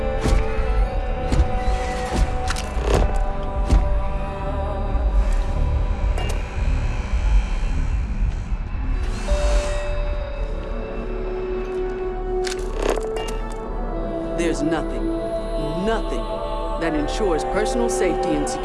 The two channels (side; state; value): both; identical; correlation 1.00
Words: There's nothing that ensures personal safety and